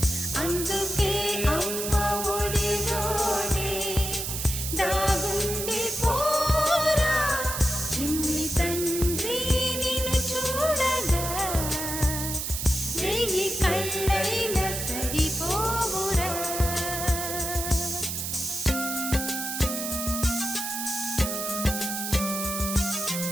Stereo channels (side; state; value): right; noise; hiss, 4 dB below the sound